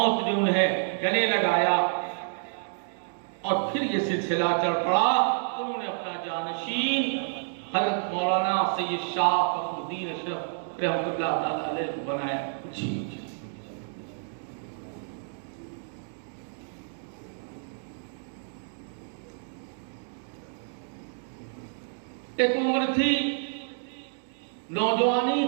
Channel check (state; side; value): silent; left; digital silence